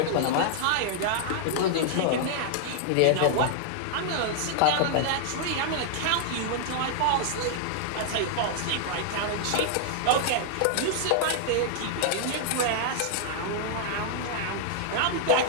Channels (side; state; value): both; different; correlation -0.01